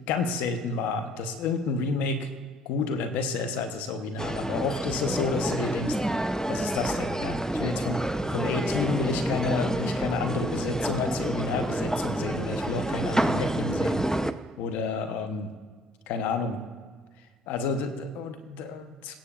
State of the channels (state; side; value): normal; both; correlation 0.60